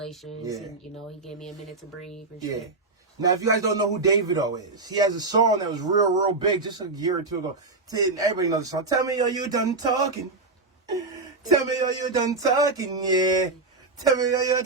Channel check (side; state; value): left; quieter; 3.6 dB